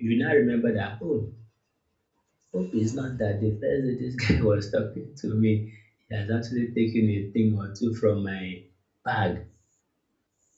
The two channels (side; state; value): both; identical; correlation 1.00